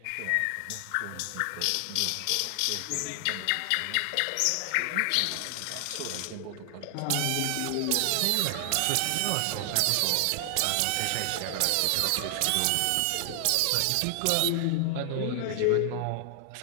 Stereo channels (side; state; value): both; different; correlation 0.00